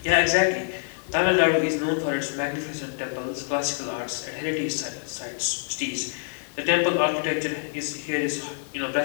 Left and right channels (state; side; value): silent; right; digital silence